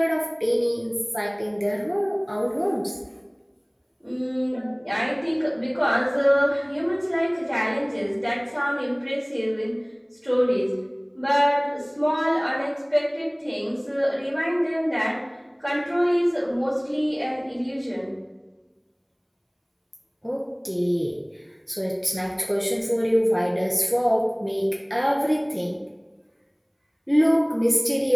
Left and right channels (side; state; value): both; identical; correlation 1.00